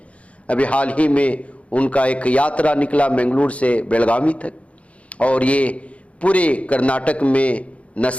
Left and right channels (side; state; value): right; late; 0.064 ms